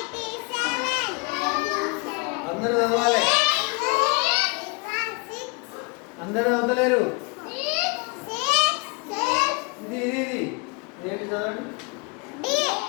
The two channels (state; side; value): quieter; right; 30.8 dB